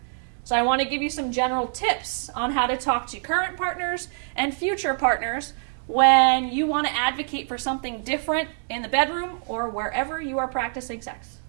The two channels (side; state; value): left; silent; digital silence